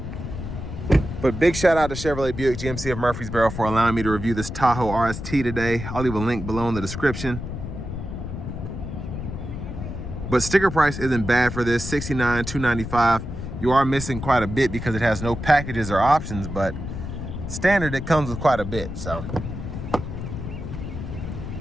But big shout out to Chevrolet Buick GMC of Murfreesboro for allowing me to review this Tahoe RST today. I'll leave a link below in the description. But sticker price isn't bad for this, $69,295. You are missing quite a bit because it has no packages or options, but standard it comes with quite a bit. So and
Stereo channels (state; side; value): noise; left; rumble, 7 dB below the sound